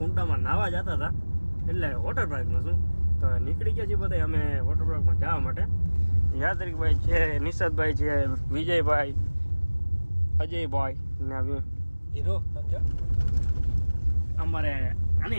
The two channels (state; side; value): inverted; both; correlation -1.00